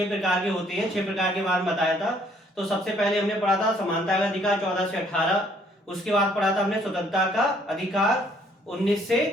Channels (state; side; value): normal; both; correlation 0.64